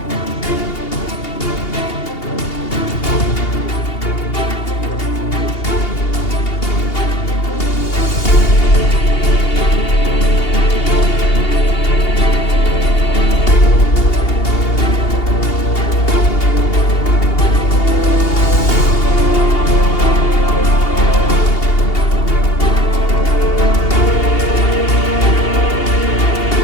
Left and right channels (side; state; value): right; late; 2.8 ms